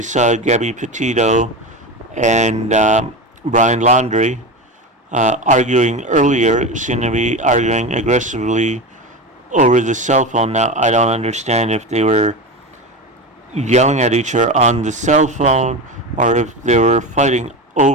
saw Gabbi Petito and Brian Laundrie arguing earlier seemed to be arguing aggressively over the cell phone. Now, I don't understand if they were yelling at each other on the cell phone or if they were fighting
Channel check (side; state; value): both; normal; correlation 0.22